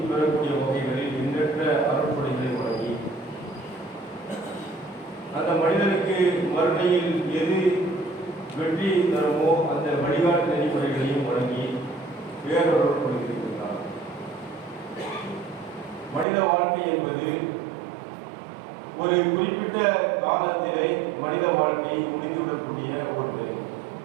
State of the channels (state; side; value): drops out; left; at 16.2 s